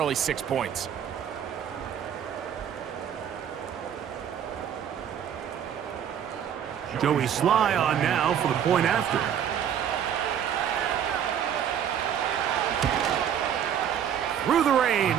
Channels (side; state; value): left; quieter; 9.0 dB